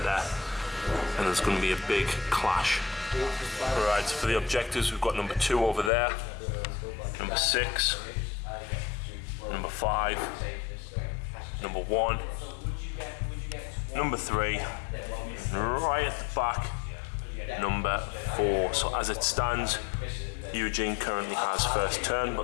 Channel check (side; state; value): right; drops out; at 5.9 s